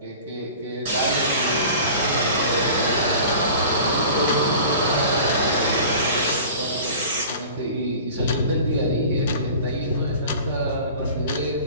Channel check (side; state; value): both; inverted; correlation -0.41